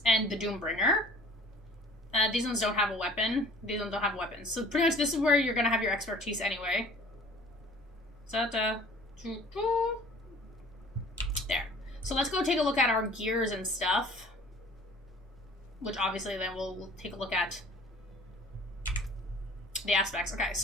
and the Doombringer. These ones don't have a weapon. These ones don't have weapons. So pretty much this is where you're going to have your expertise anyway. There. So let's go take a look at our gears and stuff. Which obviously then we'll take a look at the aspects. Okay,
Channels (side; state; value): both; normal; correlation 0.49